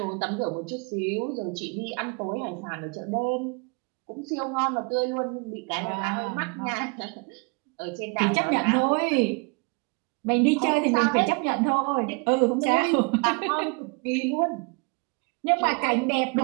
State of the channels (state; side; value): quieter; left; 32.5 dB